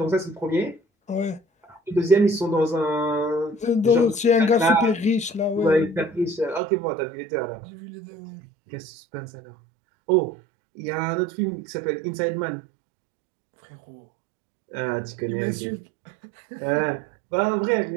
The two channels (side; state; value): left; drops out; at 6.6 s